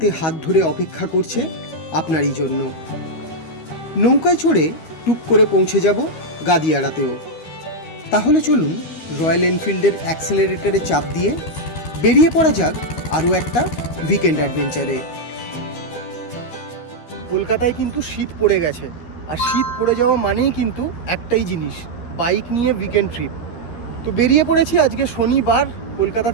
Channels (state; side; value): late; right; 13 ms